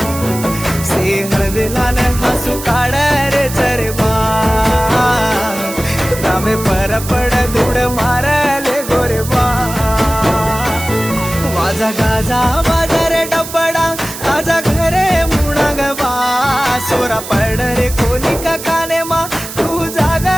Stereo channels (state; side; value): noise; right; hiss, 10 dB below the sound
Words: से हरविलान हसू काढ रे चारे बा रामे परपड धुड मारले गोरे बा माझा गाजा माझा रे डबडा आजा घरे मुणाग बा सोरा पड रे कोणी का काने मा तू जागा